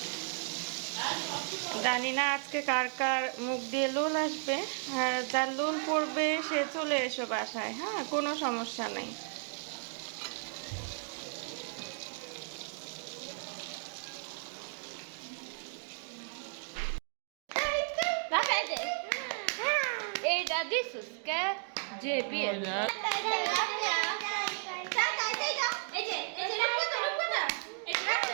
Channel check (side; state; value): left; silent; 55 dB below the other